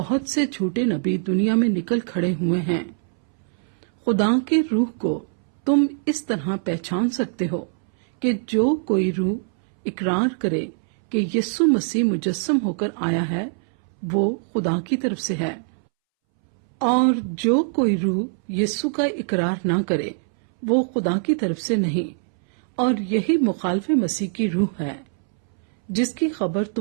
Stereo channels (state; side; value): silent; left; 64 dB below the other